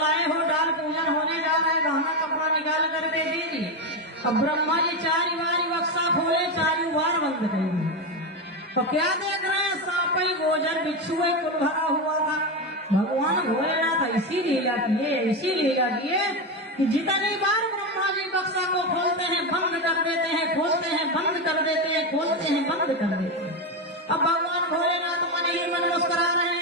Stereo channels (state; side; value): normal; both; correlation 0.13